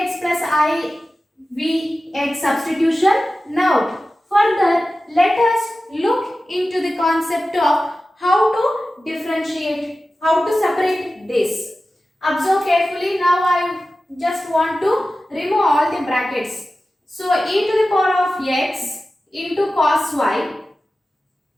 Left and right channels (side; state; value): both; normal; correlation 0.95